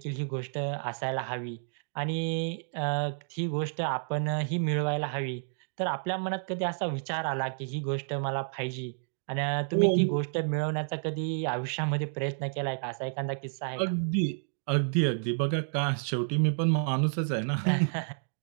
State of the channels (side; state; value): left; silent; digital silence